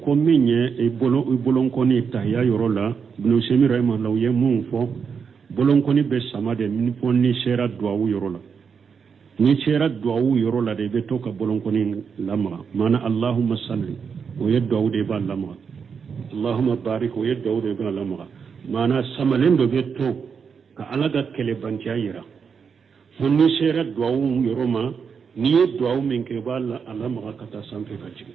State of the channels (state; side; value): quieter; left; 6.3 dB